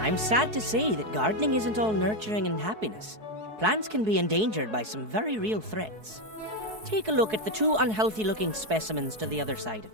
sad to say that gardening isn't all nurturing and happiness. Plants can be endangered by some very real threats. Take a look at the two unhealthy-looking specimens to the other side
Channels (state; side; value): late; left; 4.7 ms